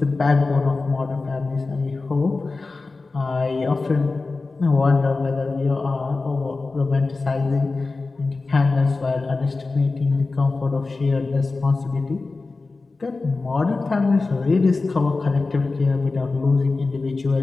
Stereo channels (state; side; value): quieter; right; 3.7 dB